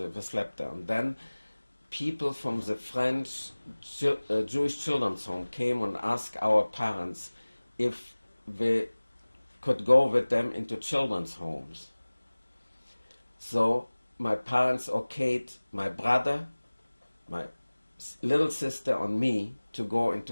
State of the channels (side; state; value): both; inverted; correlation -1.00